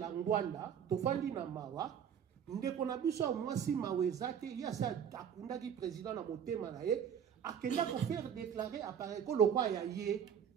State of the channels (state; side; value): quieter; left; 8.3 dB